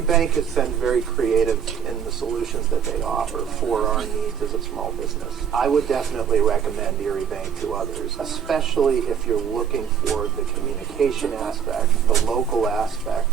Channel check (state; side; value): quieter; left; 7.9 dB